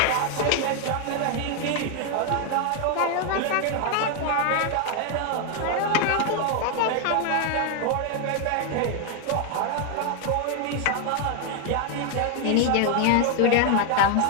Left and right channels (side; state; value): both; different; correlation 0.00